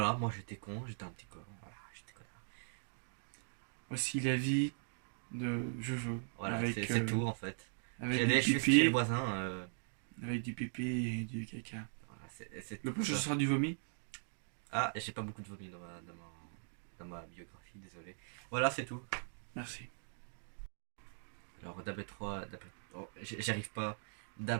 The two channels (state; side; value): silent; left; digital silence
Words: moi j'étais con, j'étais un petit con. Voilà, j'étais connard. Voici la vie de Jojo. Voilà, avec, c'est tout en fait. Avec J'ai du allé juste chez pipi, le voisin. avec du pipi et du caca. Voilà, c'est Le tout prochain ça. sera du vomi. Ah, j'ai pas beaucoup de vomi dans ma biographie, désolé. Voilà, c'est tout. Merci. Alors, j'arrive pas.